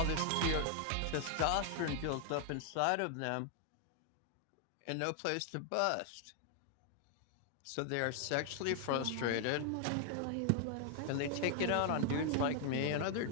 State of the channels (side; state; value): both; different; correlation 0.00